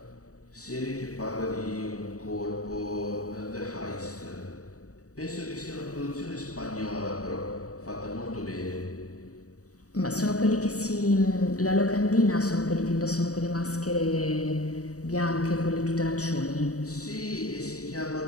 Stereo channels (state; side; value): late; right; 0.66 ms